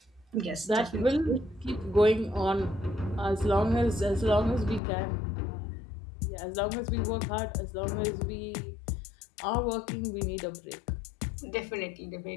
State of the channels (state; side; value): drops out; right; at 4.8 s